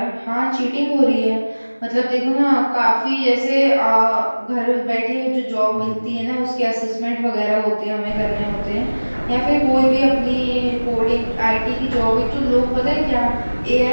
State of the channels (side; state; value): both; inverted; correlation -1.00